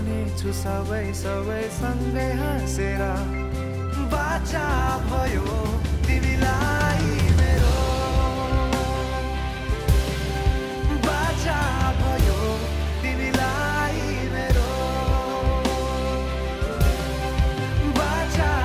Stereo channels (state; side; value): identical; both; correlation 1.00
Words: छु सबै सबै सँगै हाँसेर बाचा भयो तिमीलाई मेरो बाचा भयो तिमीलाई मेरो बाचा